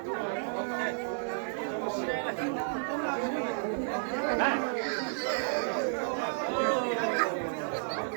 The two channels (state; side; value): silent; left; digital silence